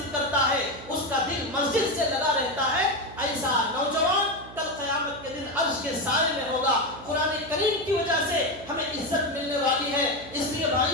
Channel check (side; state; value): right; noise; hum, 17 dB below the sound